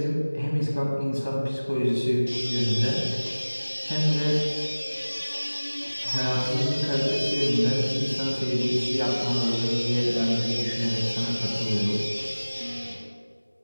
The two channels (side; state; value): both; inverted; correlation -1.00